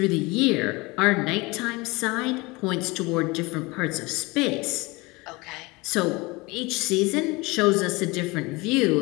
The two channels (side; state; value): right; quieter; 24.1 dB